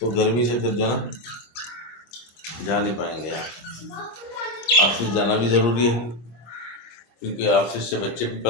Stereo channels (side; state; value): right; late; 25 ms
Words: गर्मी से फिर जो ना जा नहीं पाएंगे यार। ऑफिस जाना भी ज़रूरी है, क्योंकि ऑफिस से बच्चे भी